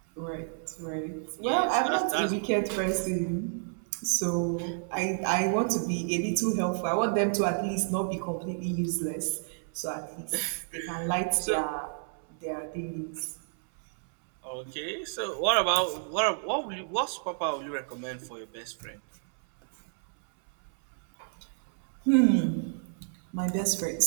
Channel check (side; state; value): left; silent; 58 dB below the other